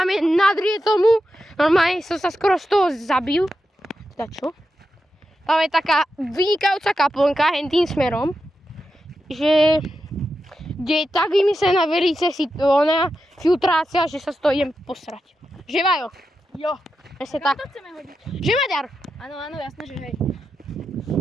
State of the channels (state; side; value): normal; both; correlation 0.88